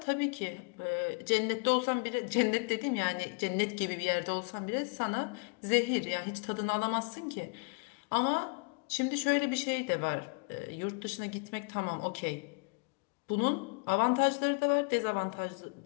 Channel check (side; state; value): right; quieter; 34.1 dB